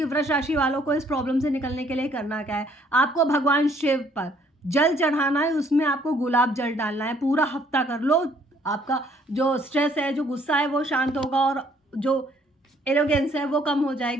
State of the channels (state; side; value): normal; both; correlation 0.63